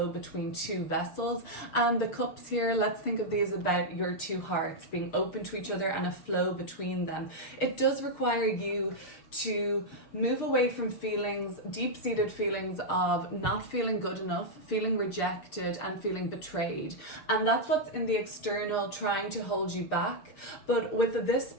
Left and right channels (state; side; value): late; right; 7.1 ms